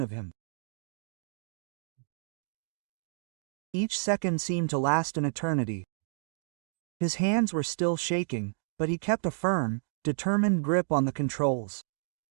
of him. Each second seemed to last an eternity. His hands were still shaking, but he kept a firm, determined grip on the controls.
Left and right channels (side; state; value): left; silent; digital silence